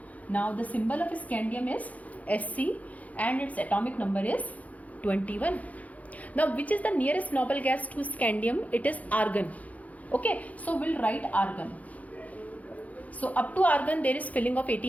Now the symbol of scandium is Sc and its atomic number is 21. Now which is the nearest noble gas to scandium? It is argon. Okay, so we'll write argon. So up to argon there is filling of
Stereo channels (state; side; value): late; right; 0.072 ms